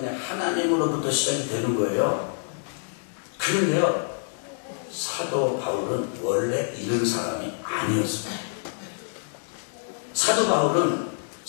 하나님으로부터 시작이 되는 거예요. 그런데요, 사도 바울은 원래 이런 사람이 아니었습니다. 사도 바울은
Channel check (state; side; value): silent; right; digital silence